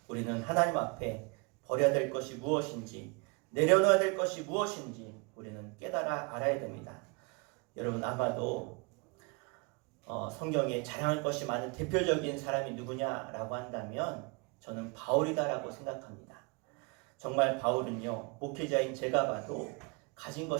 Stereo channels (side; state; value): left; quieter; 31.6 dB